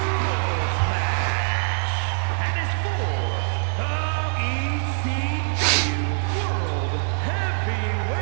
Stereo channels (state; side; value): silent; left; 56 dB below the other